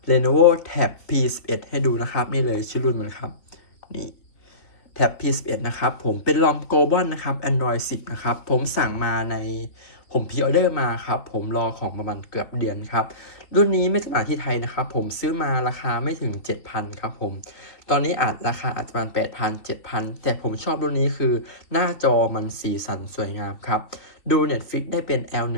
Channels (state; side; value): late; right; 3.3 ms